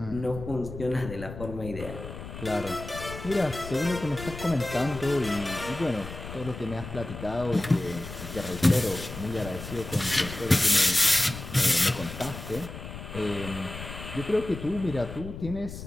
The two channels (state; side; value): noise; left; rumble, 10 dB below the sound